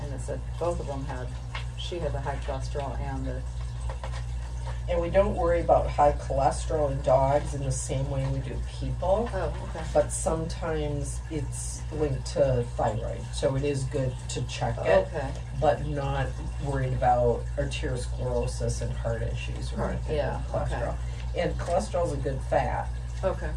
it said both of them had. She had the high cholesterol and the. And we don't worry about high cholesterol in dogs in the same way we do people. Oh, okay. But sometimes it's linked to thyroid, so it is good to check it. Okay. But not worried about arteriosclerosis and heart issues or anything Yeah, with cholesterol. okay. And cholesterol is a good fat, Okay.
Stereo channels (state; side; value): identical; both; correlation 1.00